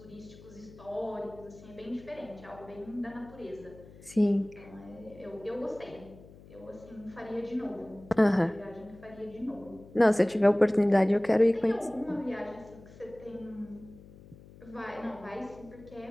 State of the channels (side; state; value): left; noise; hum, 20 dB below the sound